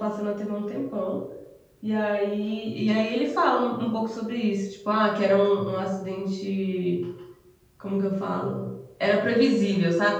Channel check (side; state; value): both; identical; correlation 1.00